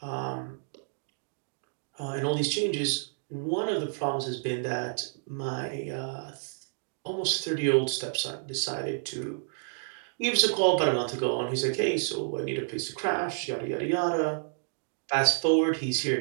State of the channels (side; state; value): left; silent; digital silence